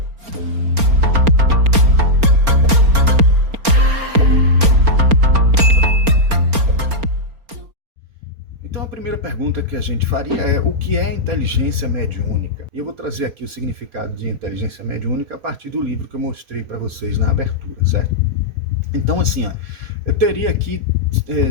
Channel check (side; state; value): left; late; 4.3 ms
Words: Então a primeira pergunta que a gente faria é: o que é inteligência mediúnica? E eu vou trazer aqui o significado de inteligência mediúnica a partir do livro que eu mostrei para vocês na abertura, certo? Então assim, ó, eu teria aqui